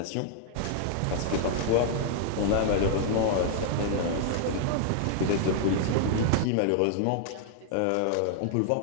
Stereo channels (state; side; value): different; both; correlation -0.01